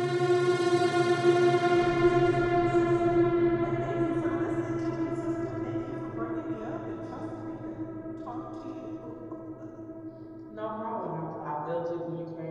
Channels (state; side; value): identical; both; correlation 1.00